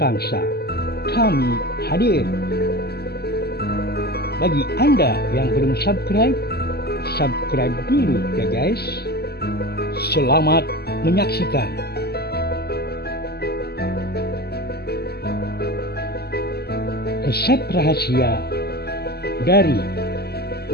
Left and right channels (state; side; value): late; right; 0.46 ms